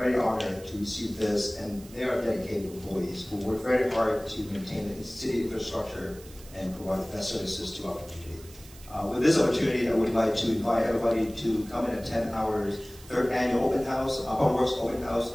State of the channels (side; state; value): right; noise; hiss, 21 dB below the sound